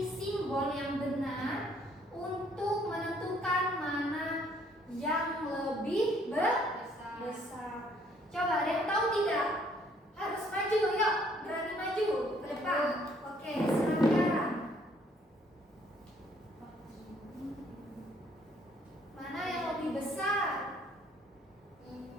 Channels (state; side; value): normal; both; correlation 0.64